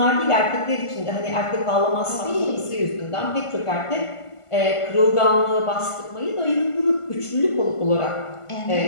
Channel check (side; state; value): right; late; 1.5 ms